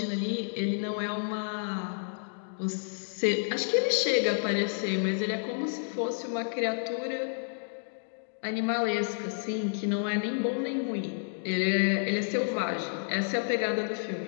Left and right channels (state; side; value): silent; right; digital silence